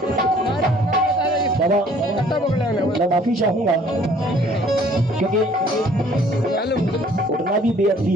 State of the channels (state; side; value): normal; both; correlation 0.57